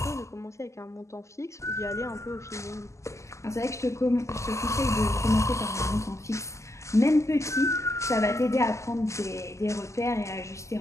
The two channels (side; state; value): right; late; 0.14 ms